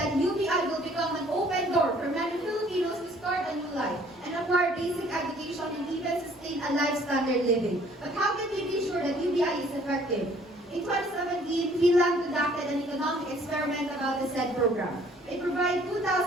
UBI will become an open door for many Filipinos to start a new life and acquire basic education and even sustain a life standard living. But how can we be sure that UBI is effective? In 2017, Finland conducted an economic experiment about the said program. It provided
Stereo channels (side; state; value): both; normal; correlation 0.58